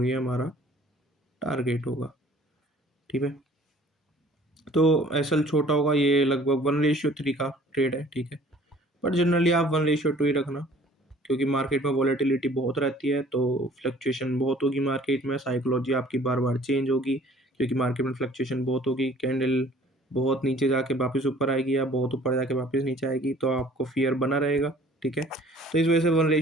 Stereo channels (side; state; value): both; normal; correlation 0.53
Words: ये हमारा टारगेट होगा। ठीक है, तो एसएल छोटा होगा, ये लगभग 1:3 का ट्रेड है। ठीक है, पर जनरली आप 1:2 ही रखना, क्योंकि मार्केट में वॉलेटिलिटी बहुत रहती है, तो फ्लक्चुएशन बहुत होगी मार्केट में, साइकोलॉजी आपकी बार बार चेंज होगी, क्योंकि मार्केट में फ्लक्चुएशन बहुत होगी। कैंडल बहुत नीचे जाके वापस ऊपर आएगी, या बहुत ऊपर जाके वापस नीचे आएगी, तो आपको फियर बना रहेगा। ठीक है, तो इस वजह से